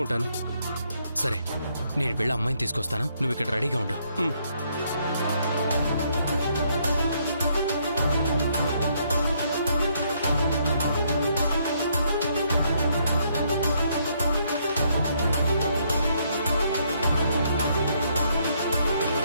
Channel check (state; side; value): inverted; both; correlation -0.71